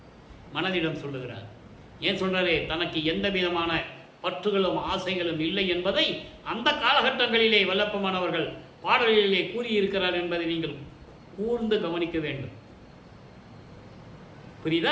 மனதிடம் சொல்லுகிறார். ஏன் சொல்றாரு? தனக்கு எந்த விதமான பற்றுகளும் ஆசைகளும் இல்லை என்பதை அந்த காலகட்டங்களிலே வல்லப்பமானவர்கள் பாடலிலே கூறியிருக்கிறார் என்பதை நீங்கள் கூர்ந்து கவனிக்க வேண்டும்.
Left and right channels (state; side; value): identical; both; correlation 1.00